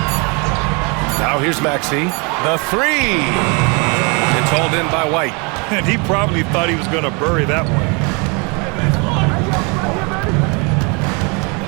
Now here's Maxey. The 3. It's hauled in by White. And he probably thought he was going to bury that one.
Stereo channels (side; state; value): left; quieter; 31.3 dB